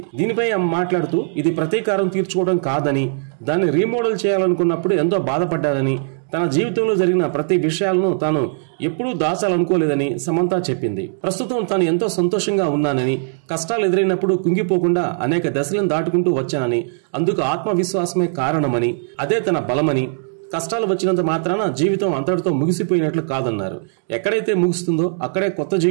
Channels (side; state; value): left; silent; digital silence